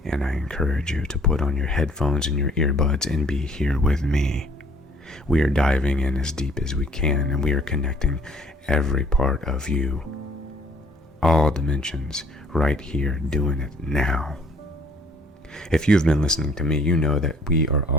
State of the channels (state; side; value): normal; both; correlation 0.58